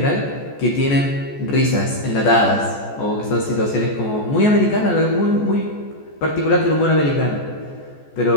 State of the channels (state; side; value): late; right; 14 ms